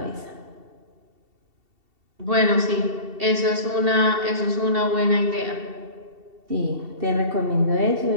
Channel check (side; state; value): left; late; 2.7 ms